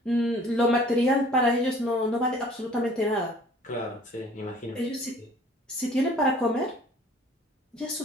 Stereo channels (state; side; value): normal; both; correlation 0.52